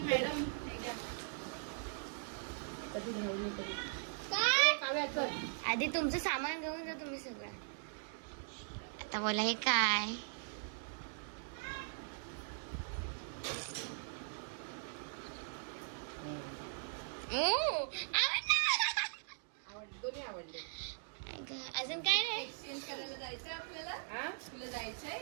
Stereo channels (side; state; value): left; silent; digital silence